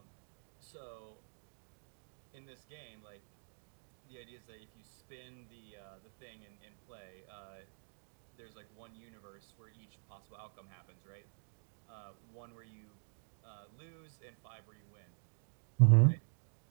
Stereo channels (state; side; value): silent; left; digital silence